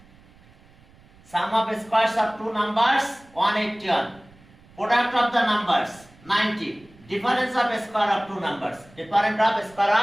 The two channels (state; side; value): noise; right; rumble, 27 dB below the sound